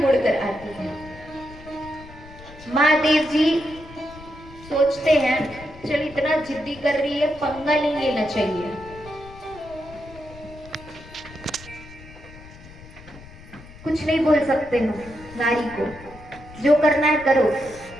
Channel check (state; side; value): noise; left; rumble, 19 dB below the sound